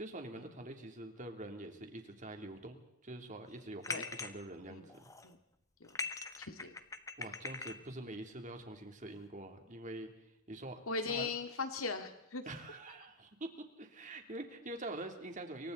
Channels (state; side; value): normal; both; correlation 0.00